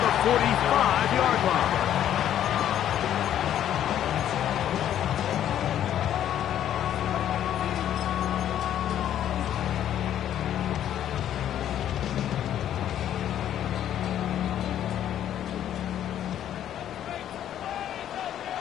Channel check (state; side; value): quieter; right; 10.8 dB